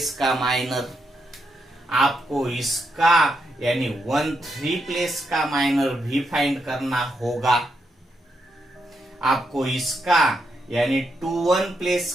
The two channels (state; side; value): normal; both; correlation 0.81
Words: का माइनर। आपको इसका यानी 1 3 प्लेस का माइनर भी फाइंड करना होगा। आपको इसका यानी 2 1 प्लेस